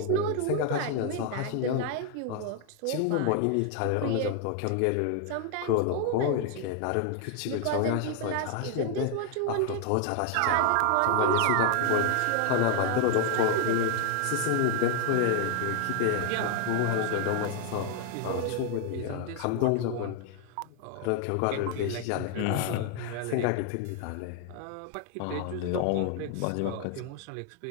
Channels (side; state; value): both; different; correlation 0.00